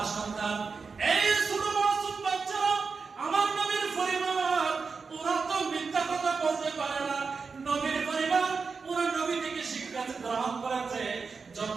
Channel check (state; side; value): quieter; left; 4.9 dB